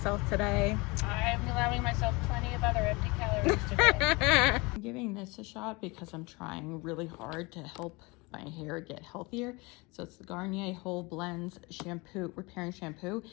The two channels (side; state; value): right; quieter; 25.7 dB